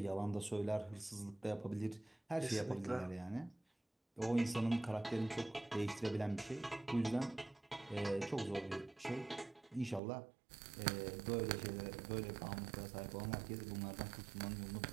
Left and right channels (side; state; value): left; drops out; at 10.0 s